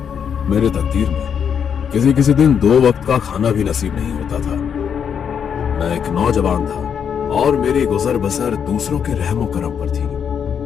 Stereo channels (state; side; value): quieter; right; 7.6 dB